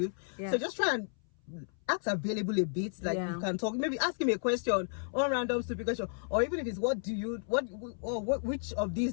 So just try and act available a bit, like you can talk, maybe ask him a question, or random stupid question, or even if it's which of these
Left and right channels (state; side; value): silent; right; 56 dB below the other